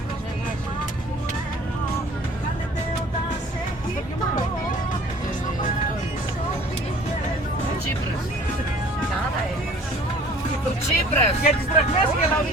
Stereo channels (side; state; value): both; normal; correlation 0.50